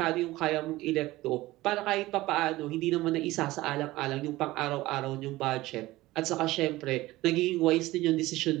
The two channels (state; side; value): quieter; left; 18.1 dB